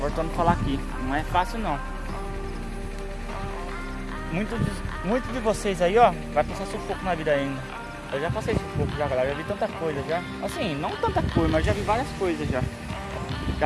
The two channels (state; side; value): identical; both; correlation 1.00